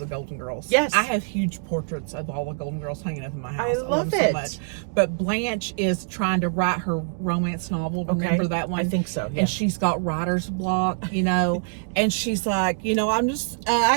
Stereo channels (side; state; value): left; silent; digital silence